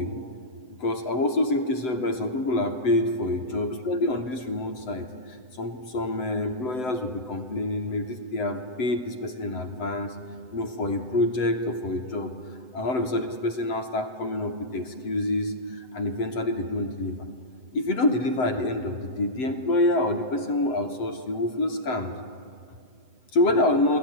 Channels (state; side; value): late; right; 7.9 ms